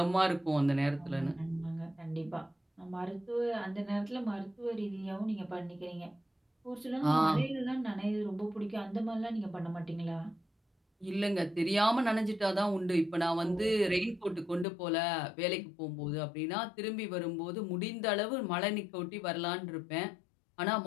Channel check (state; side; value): drops out; right; at 14.7 s